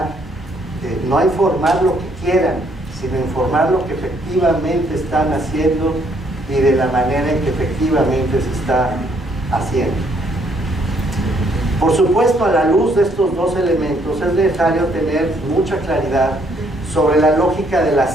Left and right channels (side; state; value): both; normal; correlation 0.68